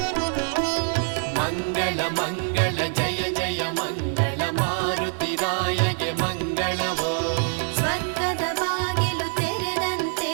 ಮಂಗಳ ಮಂಗಳ ಜಯ ಜಯ ಮಂಗಳ ಮಾರುತಿರಾಯಗೆ ಮಂಗಳವೋ. ಸ್ವರ್ಗದ ಬಾಗಿಲು ತೆರೆದಂತೆ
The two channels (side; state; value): left; silent; 60 dB below the other